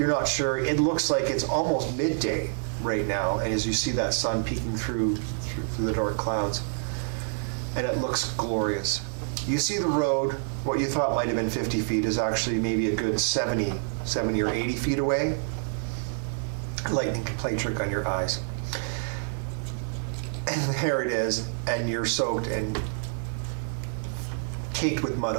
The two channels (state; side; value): silent; left; digital silence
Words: not sure. It looks like it's almost midday right now, and as you see that sun peeking through the dark clouds, and it looks glorious. You see the road, what you thought might have been 50 feet is actually maybe a good 70 or 80 feet away. Lightning can play a trick on your eyes. And there it is, and you're soaked and caked with mud